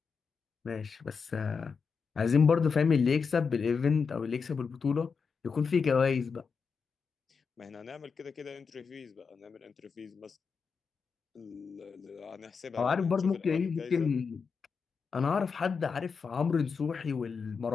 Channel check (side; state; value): right; quieter; 5.5 dB